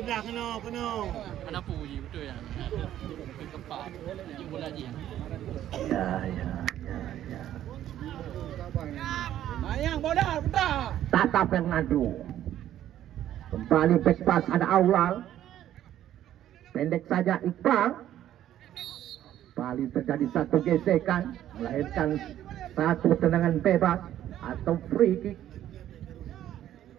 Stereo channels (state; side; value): quieter; left; 12.0 dB